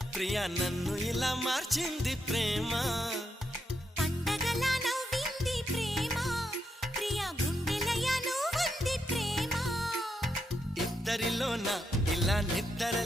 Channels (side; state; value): both; normal; correlation 0.82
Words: ప్రియా నన్ను ఇలా మార్చింది ప్రేమ. పండగలా నవ్వింది ప్రేమ, ప్రియా గుండెలయ నువ్వుంది ప్రేమ. ఇద్దరిలోన ఇలా నిద్ర